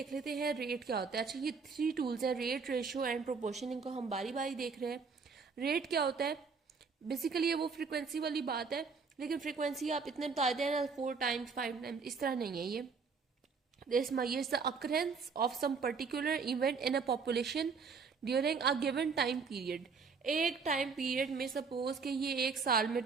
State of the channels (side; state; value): left; quieter; 5.2 dB